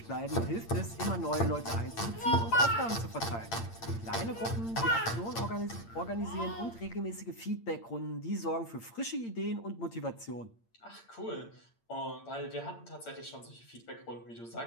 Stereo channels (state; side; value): late; right; 8.7 ms